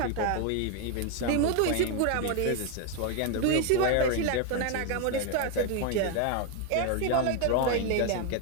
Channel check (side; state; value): both; different; correlation 0.01